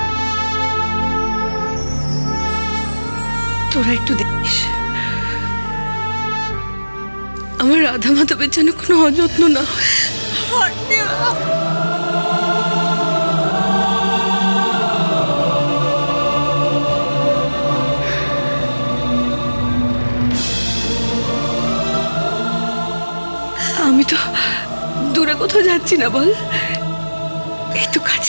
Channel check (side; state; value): both; inverted; correlation -1.00